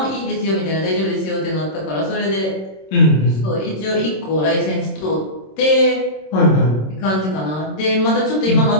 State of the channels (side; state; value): right; late; 26 ms